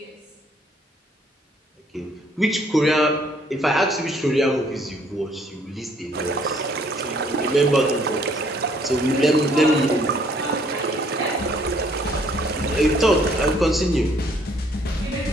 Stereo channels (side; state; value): both; normal; correlation 0.63